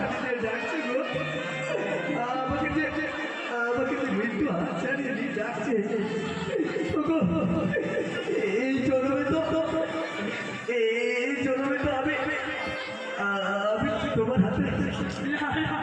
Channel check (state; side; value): identical; both; correlation 1.00